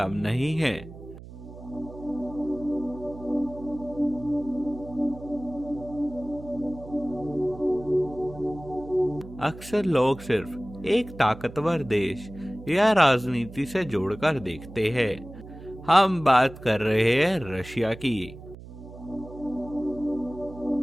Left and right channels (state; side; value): noise; right; hum, 15 dB below the sound